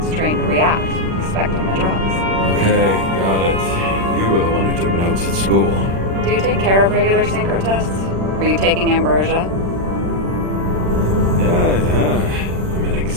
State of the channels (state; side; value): late; left; 36 ms